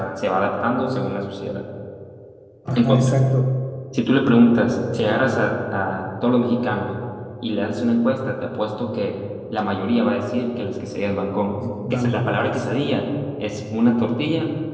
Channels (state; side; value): identical; both; correlation 1.00